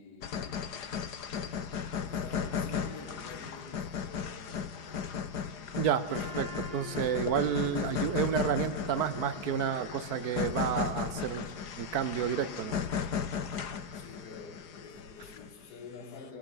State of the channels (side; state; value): right; late; 4.9 ms